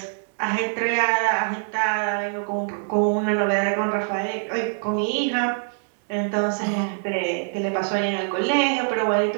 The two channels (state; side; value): silent; left; digital silence